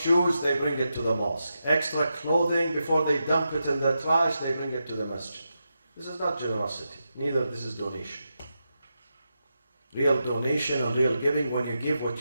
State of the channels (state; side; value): inverted; both; correlation -0.87